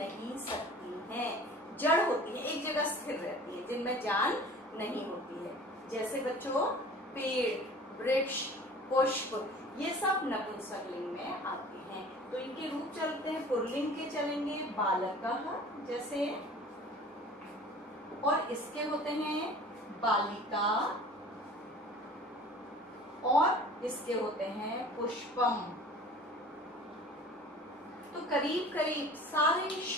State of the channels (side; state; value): both; normal; correlation 0.44